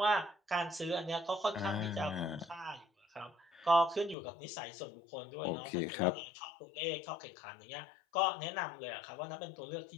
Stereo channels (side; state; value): right; drops out; at 4.2 s